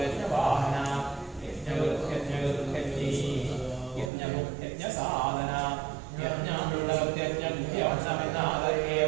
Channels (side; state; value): left; drops out; at 4.1 s